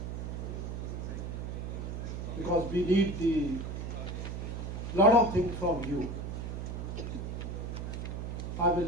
because we need the lot of things from you. I will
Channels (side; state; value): right; noise; hum, 5 dB below the sound